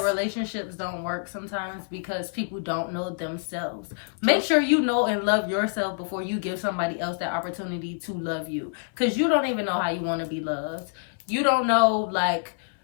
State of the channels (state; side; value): silent; right; 60 dB below the other